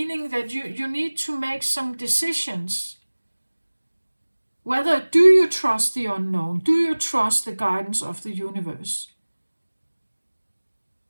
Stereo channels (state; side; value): inverted; both; correlation -1.00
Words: that you need to make some decisions. Whether do you trust the unknown? Do you trust the guidance of the universe?